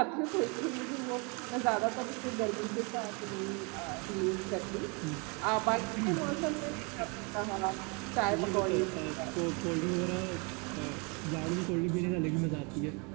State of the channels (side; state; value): left; quieter; 32.0 dB